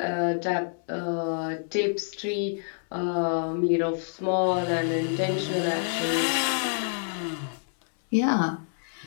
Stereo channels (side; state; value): right; silent; 60 dB below the other